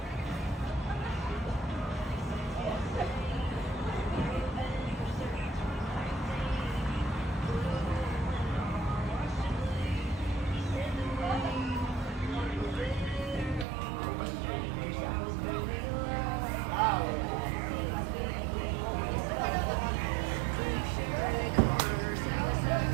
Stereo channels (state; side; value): drops out; left; at 13.7 s